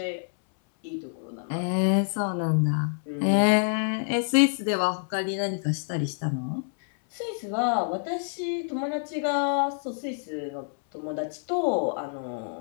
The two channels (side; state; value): right; silent; 60 dB below the other